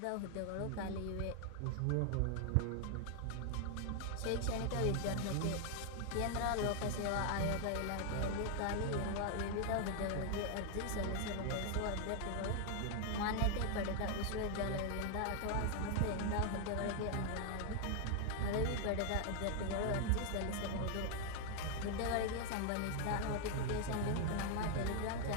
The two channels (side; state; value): both; different; correlation 0.00